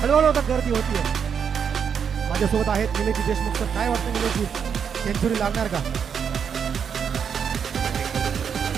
हळूहळू आता गर्दी होतीये. माझ्यासोबत आहेत निलेश देशमुख सर. काय वाटतं निलेशजी सेंचुरी लागणार का?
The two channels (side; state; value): left; quieter; 7.2 dB